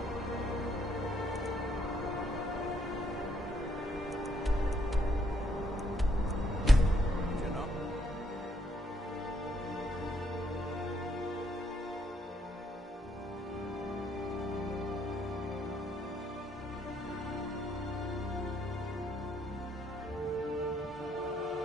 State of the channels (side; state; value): both; normal; correlation 0.71